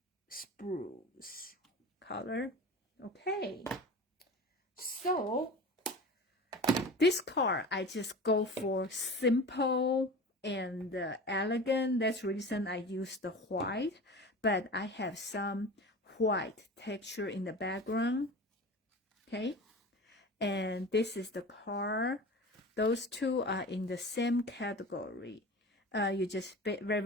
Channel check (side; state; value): both; normal; correlation 0.34